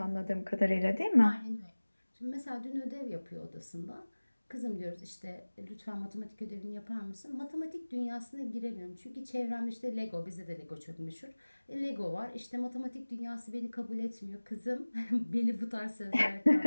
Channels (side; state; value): both; inverted; correlation -1.00